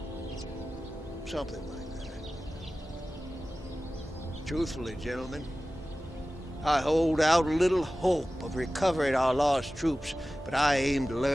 Something like that. Truthfully, gentlemen, I hold out little hope of recovering our lost troops, but I aim to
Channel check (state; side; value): normal; both; correlation 0.96